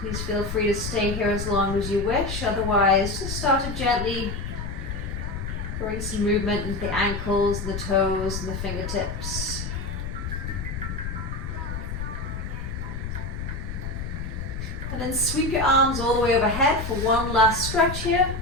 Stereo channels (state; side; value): noise; left; rumble, 5 dB below the sound